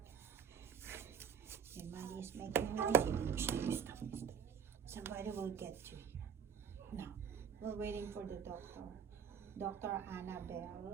And Maddie is making noise. Stop. Somebody will get you. Now, we're waiting for the doctor. Dr.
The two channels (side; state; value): left; quieter; 7.1 dB